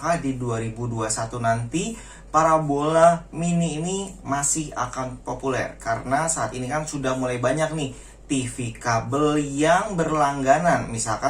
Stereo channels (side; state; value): both; identical; correlation 1.00